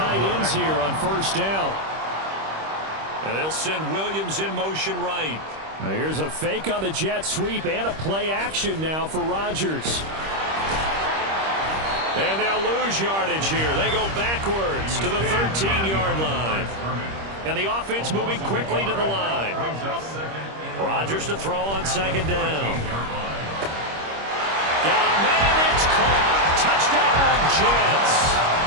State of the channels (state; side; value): late; left; 26 ms